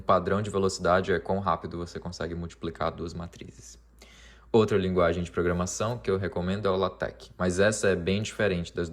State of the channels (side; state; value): both; identical; correlation 1.00